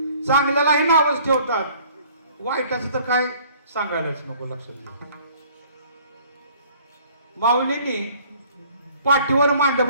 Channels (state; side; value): inverted; both; correlation -0.55